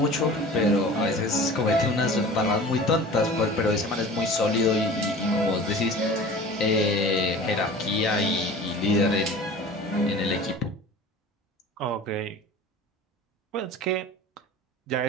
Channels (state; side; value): normal; both; correlation 0.40